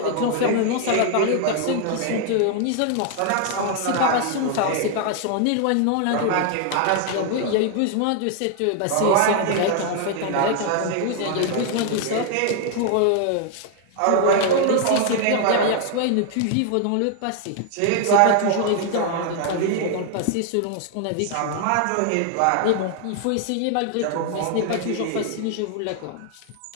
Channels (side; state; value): both; different; correlation 0.00